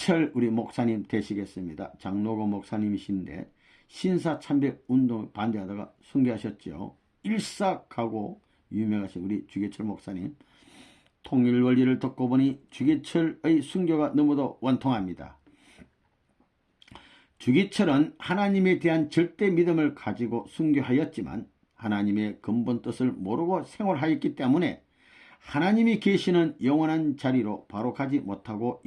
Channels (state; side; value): identical; both; correlation 1.00